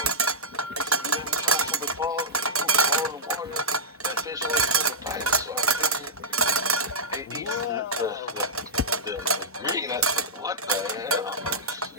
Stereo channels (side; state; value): both; normal; correlation -0.10